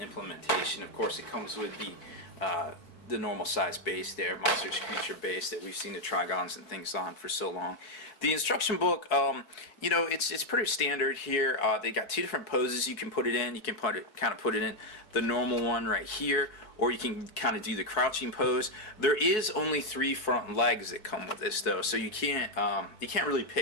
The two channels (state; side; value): late; right; 4.6 ms